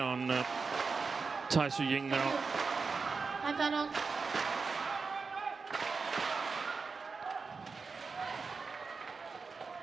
on Tai Tzu Ying now. Ratchanok.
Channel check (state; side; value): quieter; left; 4.7 dB